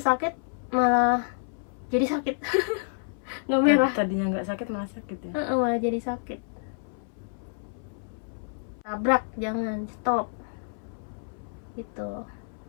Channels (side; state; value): right; silent; 59 dB below the other